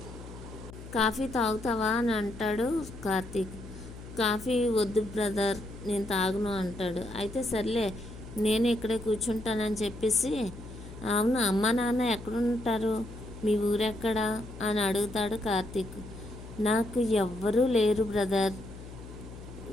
Coffee తాగుతావా అని అంటాడు కార్తీక్. కాఫీ వద్దు బ్రదర్, నేను తాగను అంటాడు. అయితే సర్లే నేను ఇక్కడే కూర్చుంటానని చెప్పేసి, అవును అమ్మ నాన్న ఎక్కడుంటారు, మీ ఊరెక్కడా అని అడుగుతాడు కార్తీక్. నాకు ఎవ్వరూ లేరు బ్రదర్,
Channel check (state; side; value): noise; left; hum, 14 dB below the sound